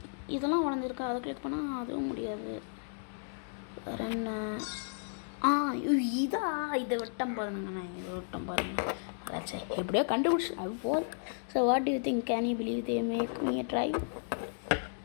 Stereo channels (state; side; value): silent; right; digital silence